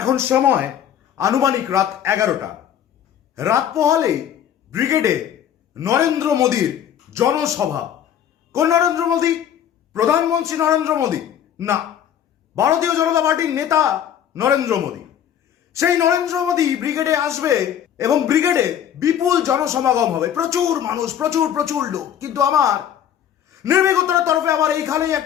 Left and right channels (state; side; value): quieter; right; 9.7 dB